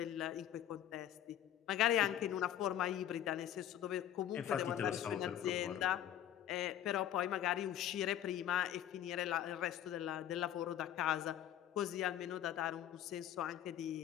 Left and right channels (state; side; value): quieter; right; 11.1 dB